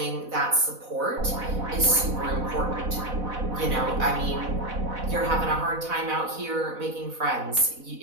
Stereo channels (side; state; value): left; late; 4.0 ms